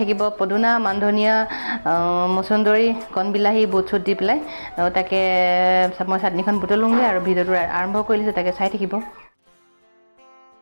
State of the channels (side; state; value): both; inverted; correlation -1.00